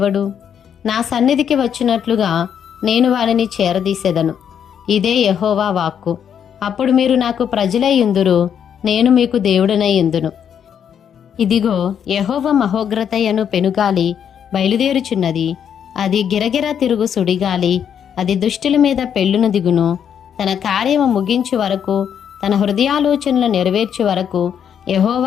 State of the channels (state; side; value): quieter; right; 8.4 dB